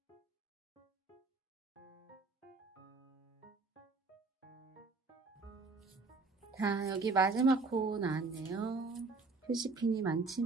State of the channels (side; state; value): left; quieter; 3.9 dB